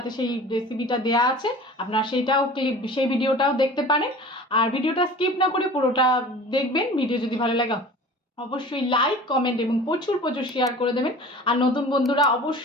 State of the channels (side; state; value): both; normal; correlation 0.41